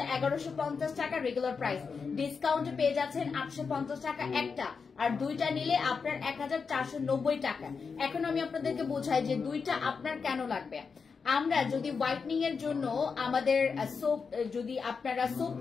1150 টাকা রেগুলার প্রাইস, ডিসকাউন্টে পেয়ে যাচ্ছেন 850 টাকা একটা, আর 2টা নিলে আপনার 1490 টাকা। এখন আমি আপনাদেরকে বোঝাই যে 2টা আপনার কেন লাগবে। আমরা যদি হোয়াইটনিং এর জন্য আমাদের সোপ, যদি আপনারা সোপ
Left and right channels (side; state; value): right; quieter; 5.4 dB